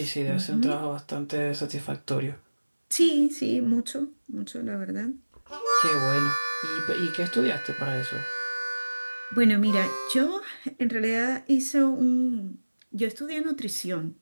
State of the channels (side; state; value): both; inverted; correlation -1.00